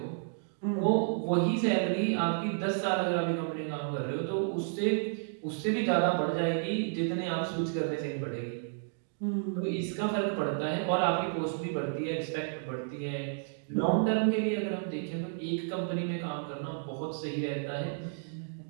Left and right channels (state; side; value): silent; left; digital silence